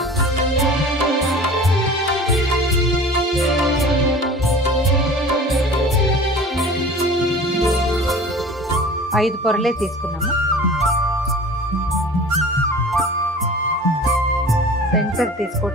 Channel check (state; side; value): normal; both; correlation 0.41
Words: ఐదు పొరలే తీసుకున్నాము. సెంటర్